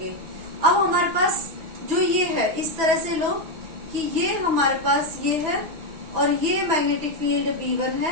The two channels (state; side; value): late; left; 6.1 ms